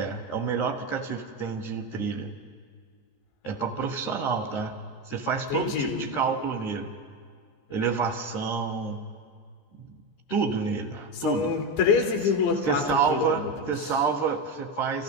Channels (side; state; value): right; late; 15 ms